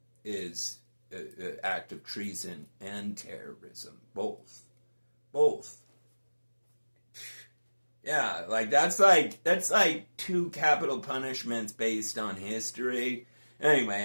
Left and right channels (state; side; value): inverted; both; correlation -1.00